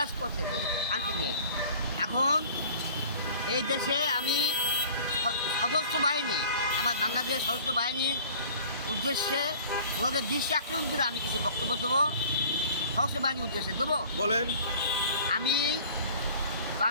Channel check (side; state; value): both; inverted; correlation -0.47